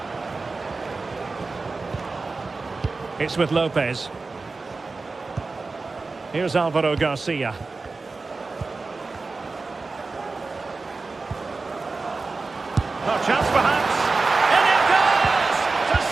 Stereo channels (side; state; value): left; quieter; 3.9 dB